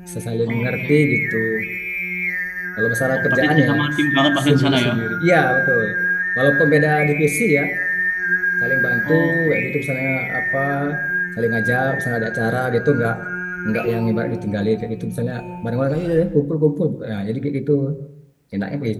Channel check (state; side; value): identical; both; correlation 1.00